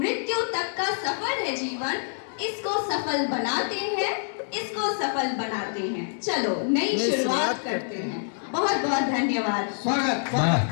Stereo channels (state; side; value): silent; right; digital silence